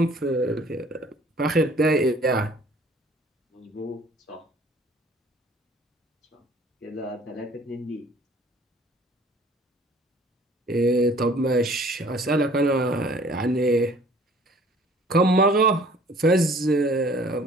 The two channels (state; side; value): normal; both; correlation 0.53